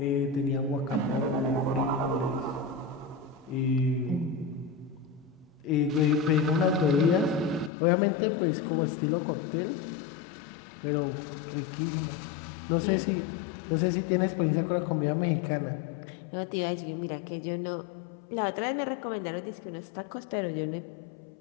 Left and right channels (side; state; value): right; drops out; at 7.7 s